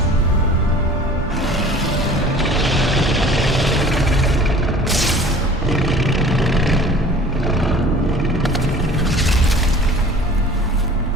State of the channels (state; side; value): normal; both; correlation 0.45